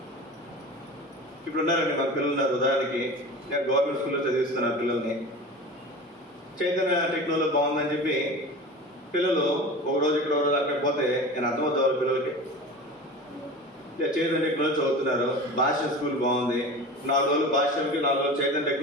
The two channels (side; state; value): both; normal; correlation 0.34